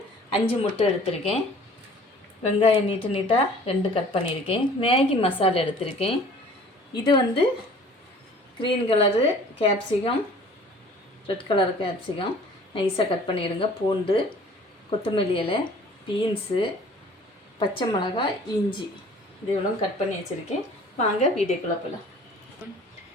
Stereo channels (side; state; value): both; normal; correlation 0.50